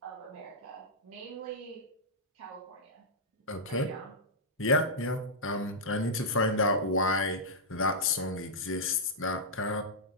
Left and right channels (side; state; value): both; normal; correlation -0.11